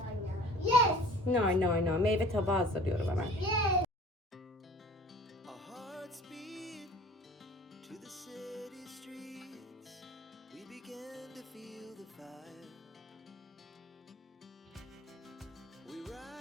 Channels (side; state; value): both; normal; correlation 0.46